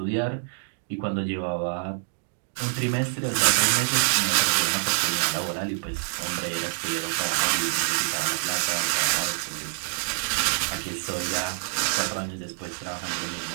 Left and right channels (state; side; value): silent; left; digital silence